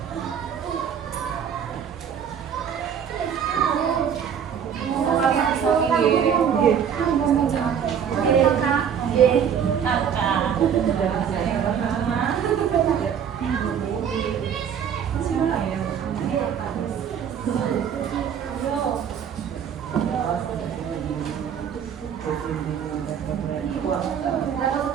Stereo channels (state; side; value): quieter; left; 8.1 dB